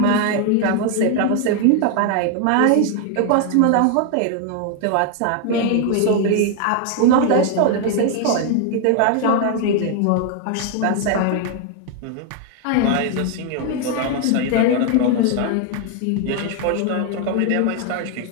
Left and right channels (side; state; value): both; different; correlation 0.00